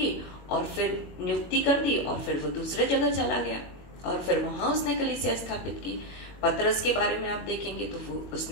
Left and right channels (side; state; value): right; late; 21 ms